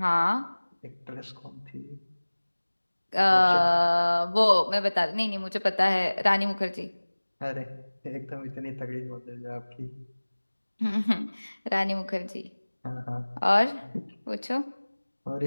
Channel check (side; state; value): both; inverted; correlation -1.00